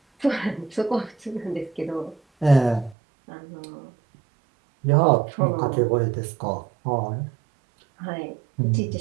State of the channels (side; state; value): left; drops out; at 3.0 s